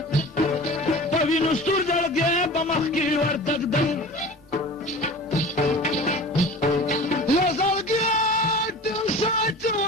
په وینو ستور زړګی به مخکې ورتږدم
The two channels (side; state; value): both; normal; correlation 0.38